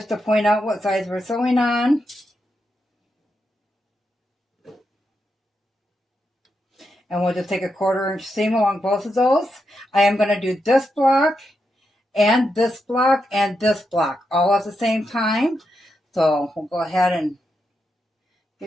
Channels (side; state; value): both; normal; correlation 0.85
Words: to point out what size we're sewing on. And we'll just take a 1/4 inch seam along both of those. I am going to do this block and this block and this block all at the same time. So we'll go ahead and